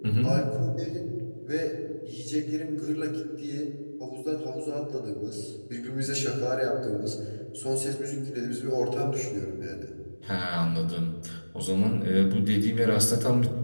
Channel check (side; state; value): both; inverted; correlation -1.00